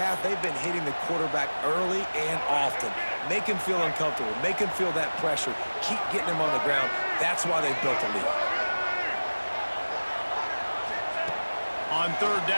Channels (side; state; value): both; inverted; correlation -1.00